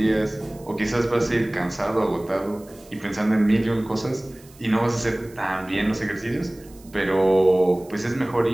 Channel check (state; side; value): noise; right; hiss, 25 dB below the sound